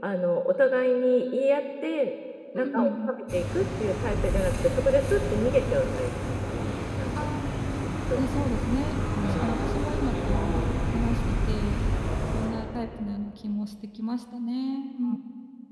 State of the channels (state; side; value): identical; both; correlation 1.00